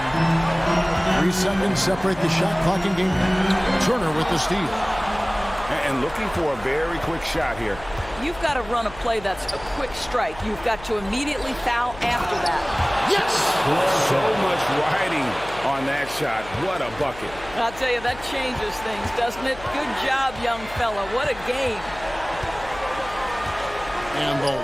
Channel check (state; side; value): noise; left; hum, 17 dB below the sound